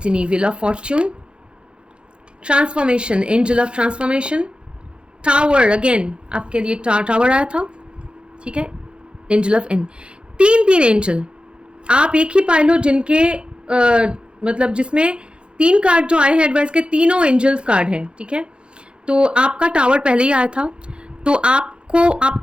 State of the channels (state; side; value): late; left; 0.054 ms